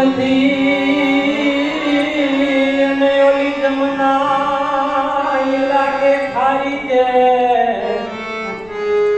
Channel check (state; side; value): noise; left; rumble, 27 dB below the sound